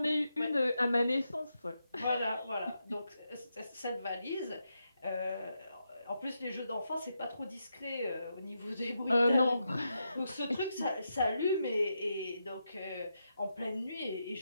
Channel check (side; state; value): both; inverted; correlation -0.85